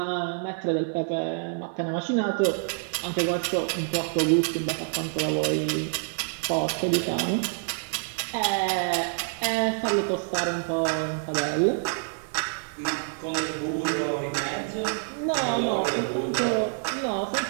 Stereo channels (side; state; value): left; silent; 60 dB below the other